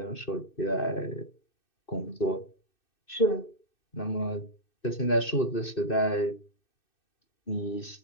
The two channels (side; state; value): right; late; 2.6 ms